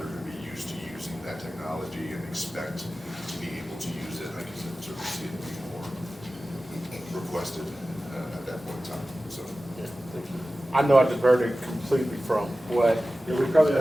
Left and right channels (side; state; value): both; normal; correlation 0.95